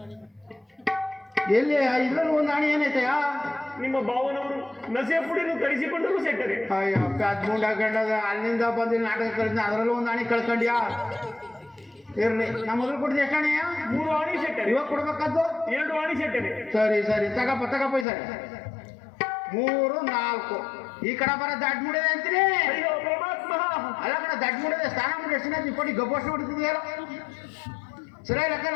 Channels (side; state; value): right; drops out; at 18.1 s